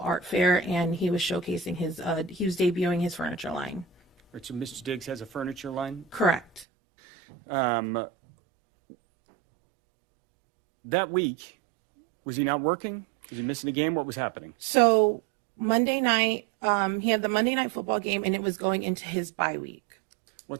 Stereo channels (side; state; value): left; drops out; at 6.7 s